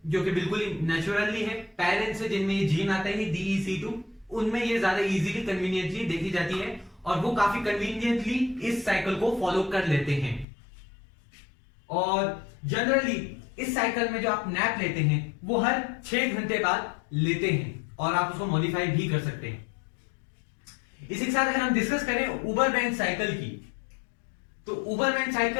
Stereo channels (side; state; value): right; drops out; at 10.5 s